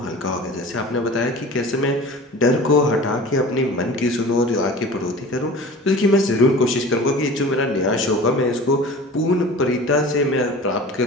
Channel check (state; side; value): normal; both; correlation 0.39